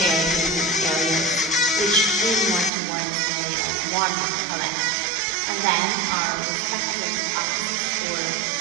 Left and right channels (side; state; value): left; drops out; at 2.7 s